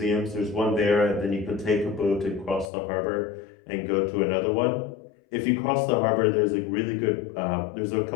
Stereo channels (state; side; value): drops out; right; at 2.7 s